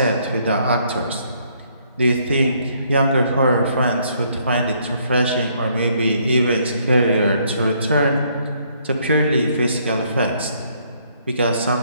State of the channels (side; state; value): both; inverted; correlation -0.68